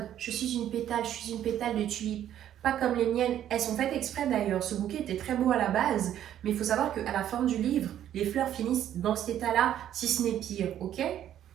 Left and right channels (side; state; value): left; quieter; 11.0 dB